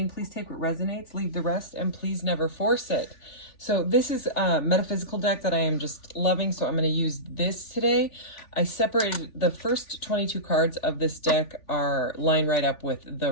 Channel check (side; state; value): right; late; 3.4 ms